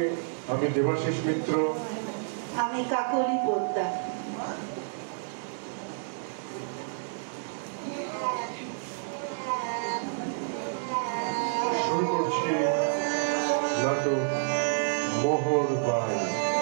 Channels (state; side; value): silent; left; digital silence